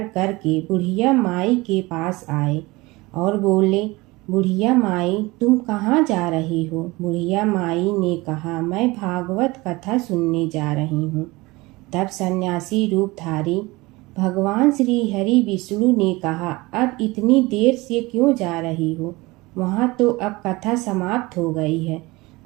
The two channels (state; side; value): quieter; left; 22.1 dB